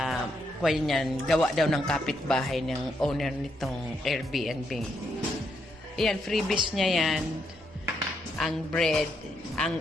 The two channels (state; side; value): normal; both; correlation 0.78